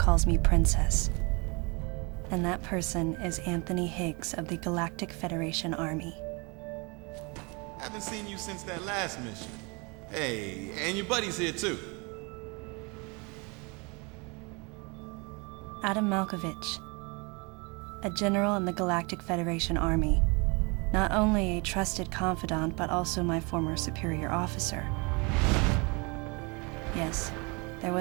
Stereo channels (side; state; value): left; quieter; 29.8 dB